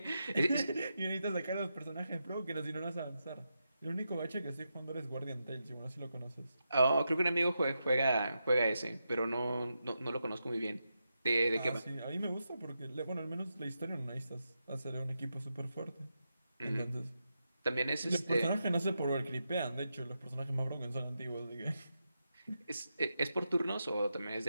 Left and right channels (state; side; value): inverted; both; correlation -0.87